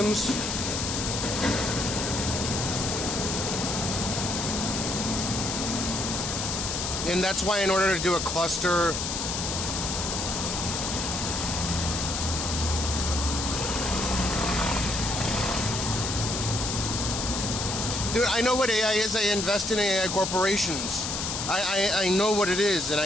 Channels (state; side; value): noise; left; hiss, 2 dB below the sound